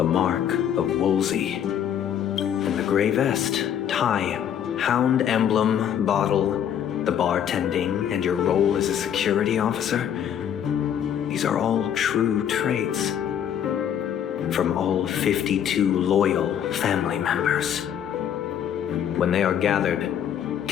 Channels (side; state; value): right; quieter; 9.4 dB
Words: mark of Wolsey. And the gray vest, tie, hound emblem, bottle, the bartending, and your role as a security officer. These are all true traits. From all 52 loyal family members. When they are gathered,